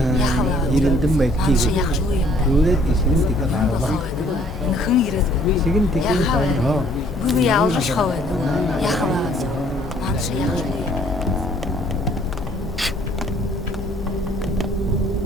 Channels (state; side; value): normal; both; correlation 0.60